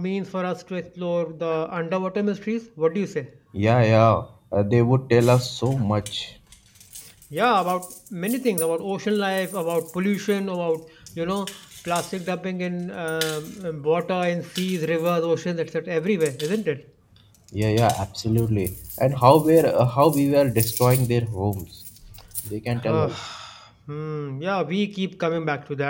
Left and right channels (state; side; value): identical; both; correlation 1.00